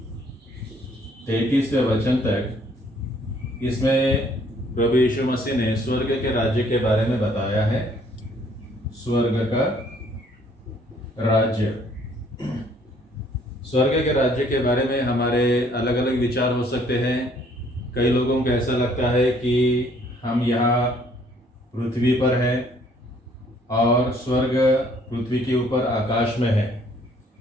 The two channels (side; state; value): both; normal; correlation 0.62